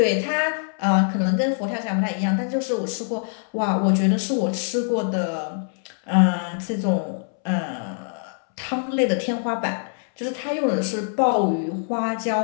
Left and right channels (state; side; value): silent; right; 63 dB below the other